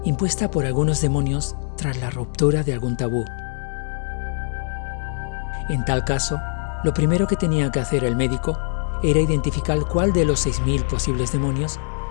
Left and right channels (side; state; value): right; silent; digital silence